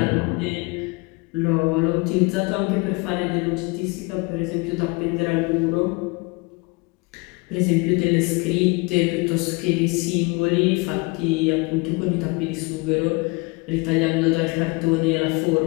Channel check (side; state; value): right; quieter; 27.1 dB